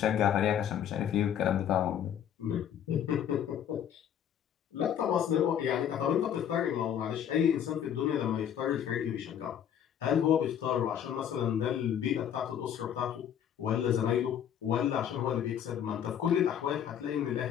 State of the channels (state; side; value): quieter; right; 9.4 dB